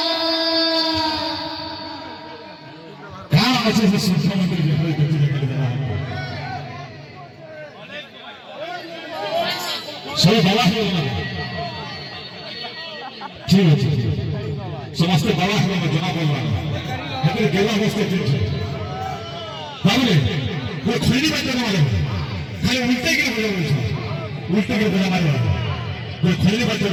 কার আছে যে শিক্ষামন্ত্রী যেভাবে ব্যক্তি দেখে দেওয়া সেই বলা হলো না ঠিক আছে সমস্ত বলা হলো না জানা বললাম এদের গেলা অবস্থা চলছে তাহলে ওই খৈনি বাচ্চা মারে খালি উল্টে গিয়ে বোঝা বলছে উল্টে গিয়ে বোঝা মারে ওই খৈনি বাচ্চা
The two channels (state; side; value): identical; both; correlation 1.00